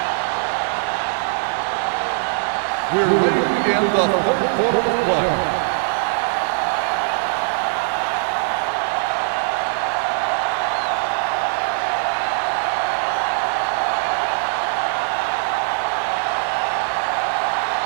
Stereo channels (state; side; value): silent; left; digital silence